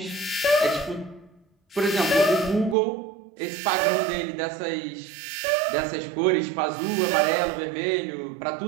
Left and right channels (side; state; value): left; drops out; at 2.8 s